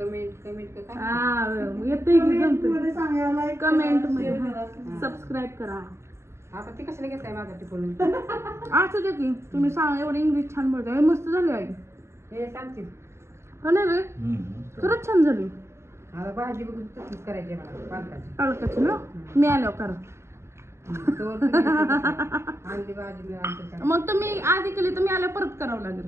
हा येते कमेंट मध्ये. सबस्क्राईब करा. आता ती कशाला घेताय माझा टिपून? असं दे की तुम्ही सांगा. एवढं इंग्लिश छान बोलताय. मस्त झाली आई. हे सांगतील हो ना रे? खरंच छान झाली. आता भाजी बघून तशीच करायची मला पालकाची. पालकाची ना? मी आल्यावर करा. आणली भाजी मी आणते. मग तुम्ही आधी केली तर मी आल्यावर परत करावं लागेल.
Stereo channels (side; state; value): left; late; 0.13 ms